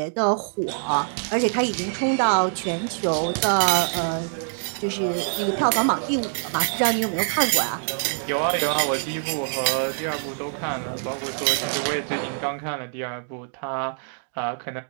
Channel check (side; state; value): left; silent; digital silence